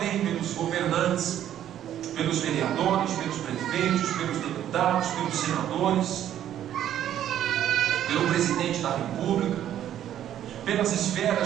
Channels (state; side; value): quieter; left; 11.1 dB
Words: pelos governantes, pelos vereadores, pelos prefeitos, pelos deputados, pelos senadores, pelo presidente da república, pelas